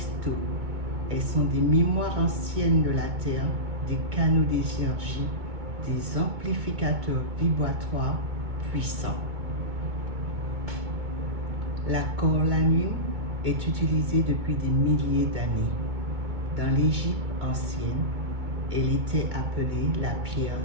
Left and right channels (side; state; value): left; late; 2.2 ms